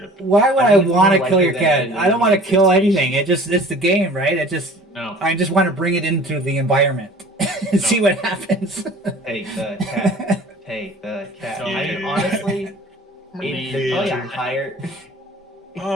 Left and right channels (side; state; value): both; normal; correlation 0.46